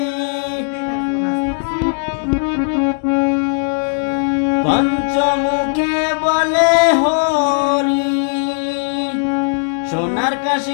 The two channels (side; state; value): right; silent; digital silence